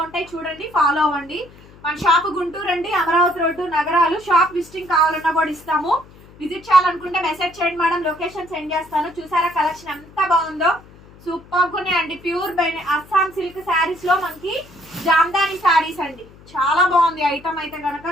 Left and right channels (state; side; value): noise; left; hum, 23 dB below the sound